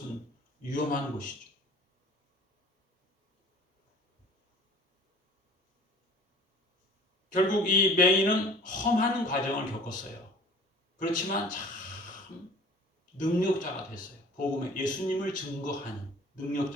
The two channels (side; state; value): both; normal; correlation 0.47